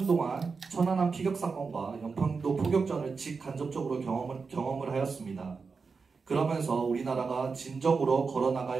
천안함 피격 사건과 연평도 포격전을 직간접적으로 경험을 하였습니다. 그러면서 우리나라가 진정으로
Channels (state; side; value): quieter; left; 4.9 dB